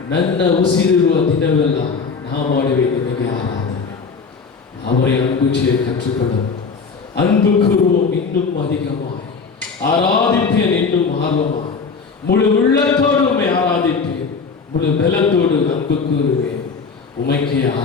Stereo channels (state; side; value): quieter; right; 5.1 dB